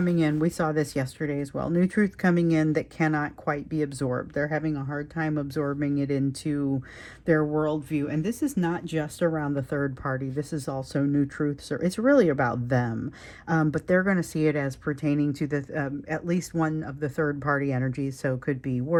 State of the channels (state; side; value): identical; both; correlation 1.00